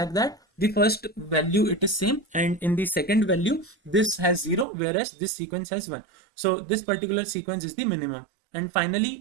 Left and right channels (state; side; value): drops out; left; at 4.7 s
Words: that the first value it is same, and in the second value this has 0 whereas this sequence has 1. So this particular sequence is the minimum, and